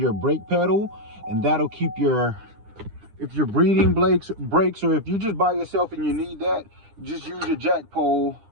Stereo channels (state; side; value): late; left; 9.9 ms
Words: brake pedal, and that'll keep your, if your breathing breaks, or if you're just by yourself and you need that, just use your jack pole